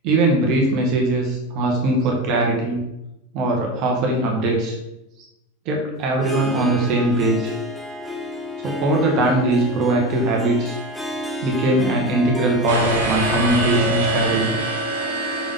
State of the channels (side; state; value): both; normal; correlation 0.22